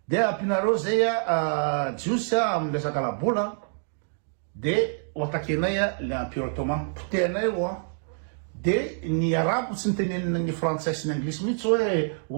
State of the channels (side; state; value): left; silent; digital silence